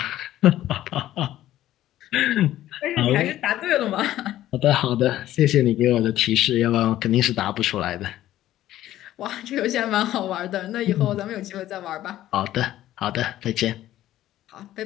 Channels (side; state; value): right; quieter; 13.6 dB